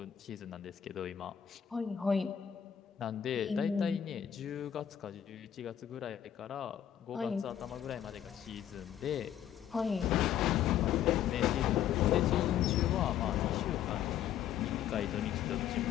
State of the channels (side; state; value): right; quieter; 10.1 dB